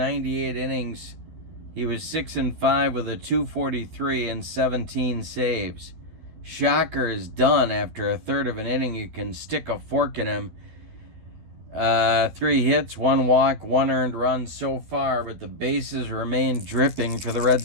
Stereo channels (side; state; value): left; late; 12 ms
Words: innings. He was 6-5 with a .243 and 17 saves. Shocker is done after a third of an inning. You can stick a fork in him. 3 hits, 1 walk, 1 earned run so far, but the bases remain dripping for the Red